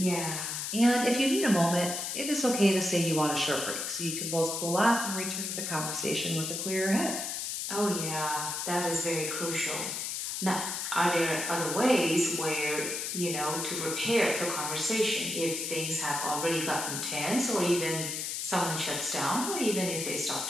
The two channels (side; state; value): left; noise; hiss, 3 dB below the sound